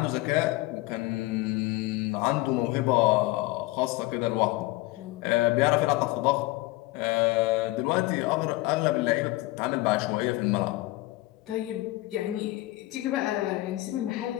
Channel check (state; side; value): quieter; right; 19.5 dB